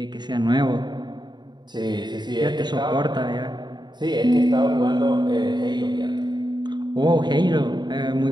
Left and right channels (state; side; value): late; left; 0.21 ms